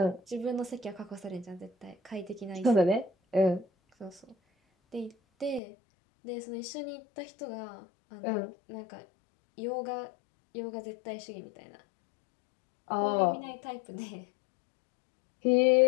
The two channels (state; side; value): drops out; right; at 5.6 s